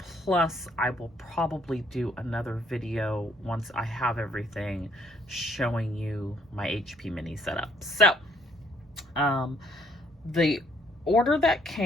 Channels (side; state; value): both; normal; correlation 0.66